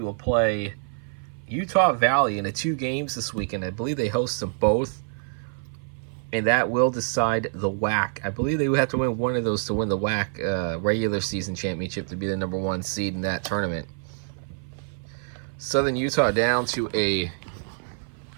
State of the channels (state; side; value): silent; left; 56 dB below the other